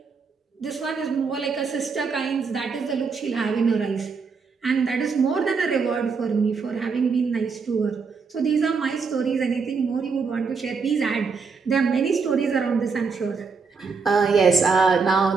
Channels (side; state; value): left; quieter; 5.1 dB